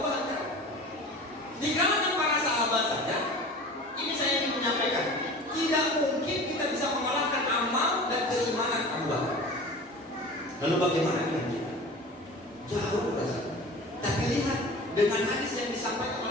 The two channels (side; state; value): both; normal; correlation 0.38